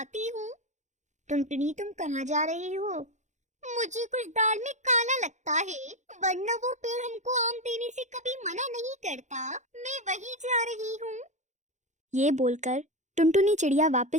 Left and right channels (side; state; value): left; late; 0.34 ms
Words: हूँ। टुनटुनी तुम कहाँ जा रही हो? मुझे कुछ दाल में काला लगता है, वरना वो पेड़ हमको आम देने से कभी मना नहीं करता। मैं वहीं जा रही हूँ। ये बोलकर टुनटुनी चिड़िया